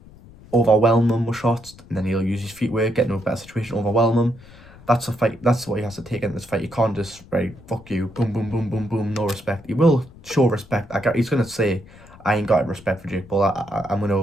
overwhelm him with shots, and then he'll use his feet work, get into a better situation, overwhelm him. That's a fight. That's what he has to take in this fight. You can't just fuck you, boom, boom, boom, boom, boom, no respect. He will show respect. He's gonna say, I ain't got respect for Jake Paul. I'm gonna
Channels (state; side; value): noise; left; rumble, 22 dB below the sound